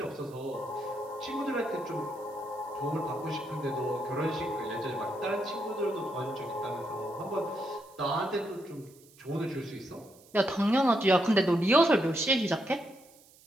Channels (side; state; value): right; noise; hiss, 26 dB below the sound